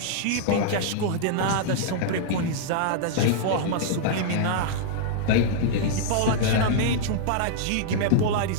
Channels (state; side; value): different; both; correlation -0.01